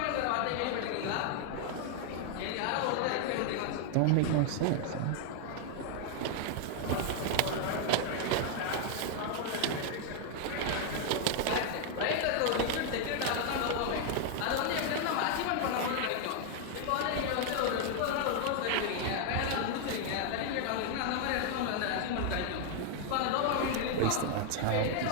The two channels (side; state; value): both; different; correlation 0.00